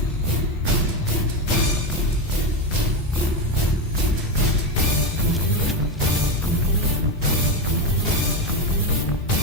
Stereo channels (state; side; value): normal; both; correlation 0.14